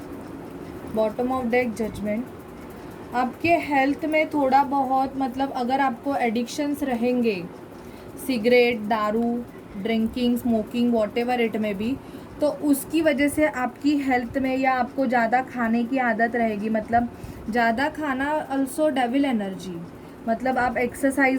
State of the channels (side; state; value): both; identical; correlation 1.00